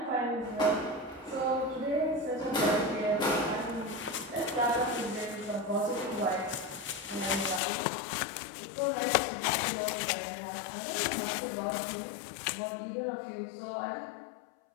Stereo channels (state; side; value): drops out; right; at 7.6 s